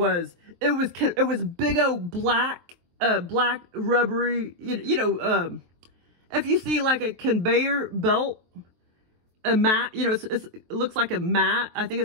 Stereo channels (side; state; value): left; late; 23 ms